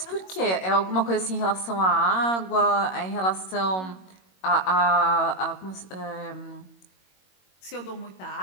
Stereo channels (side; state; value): right; late; 21 ms